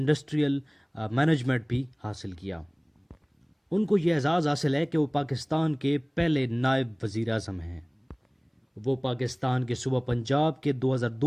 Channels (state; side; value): identical; both; correlation 1.00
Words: management بھی حاصل کیا۔ ان کو یہ اعزاز حاصل ہے کہ وہ پاکستان کے پہلے نائب وزیر اعظم ہیں۔ وہ پاکستان کے صوبہ پنجاب کے